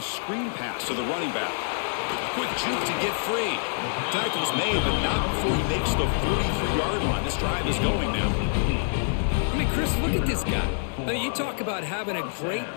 screen pass to the running back. Quick juke to get free. Tackle's made, but not before he makes the 43-yard line. This drive is going now. I mean, Chris, look at this guy. I mean, you talk about having a great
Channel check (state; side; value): silent; right; digital silence